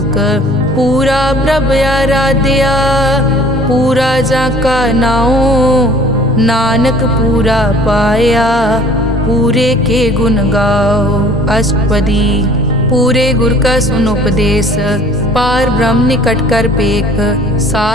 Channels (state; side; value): normal; both; correlation 0.51